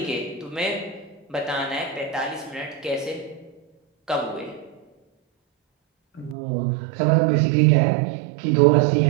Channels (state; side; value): drops out; left; at 6.4 s